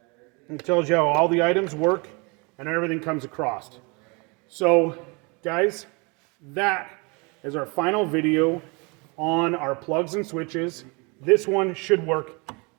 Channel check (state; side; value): quieter; left; 29.8 dB